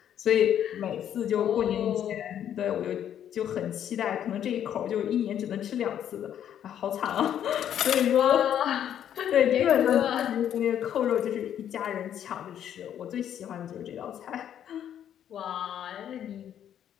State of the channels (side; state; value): right; quieter; 9.9 dB